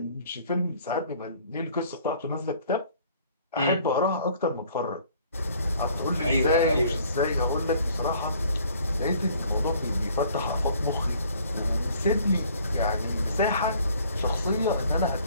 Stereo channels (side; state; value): both; inverted; correlation -0.57